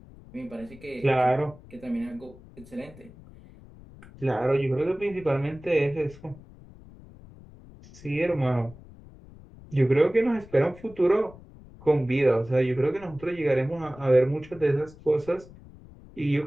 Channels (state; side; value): noise; left; rumble, 21 dB below the sound